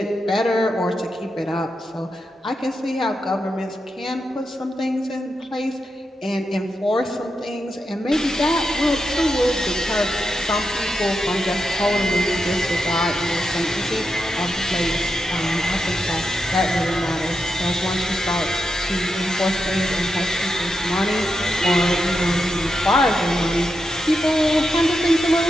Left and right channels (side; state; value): both; normal; correlation 0.87